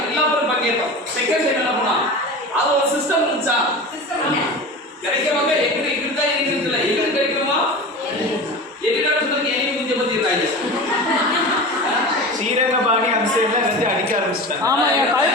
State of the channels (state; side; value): normal; both; correlation 0.31